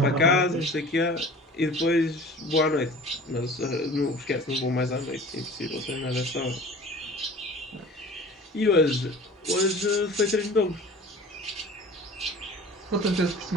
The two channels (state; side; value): normal; both; correlation 0.42